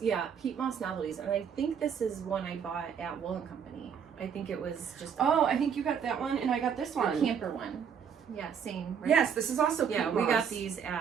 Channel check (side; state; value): left; quieter; 7.4 dB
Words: Yeah, Pete Moss Novelties. And I think this is one I bought at Wool & Company. I think it was just I think you got that one and I got this one. A camper one. Yeah, same. Right? Yes, this is also Pete Moss. Yeah, we got these